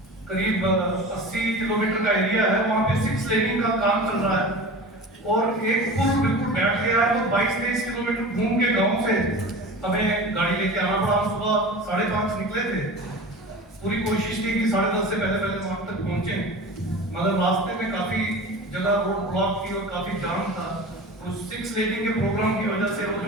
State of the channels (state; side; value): normal; both; correlation 0.34